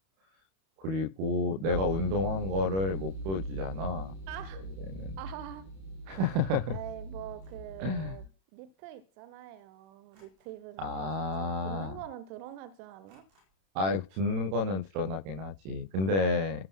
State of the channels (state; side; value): late; left; 31 ms